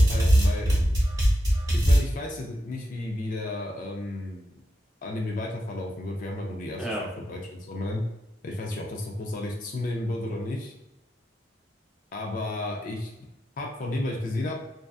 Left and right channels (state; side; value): normal; both; correlation 0.87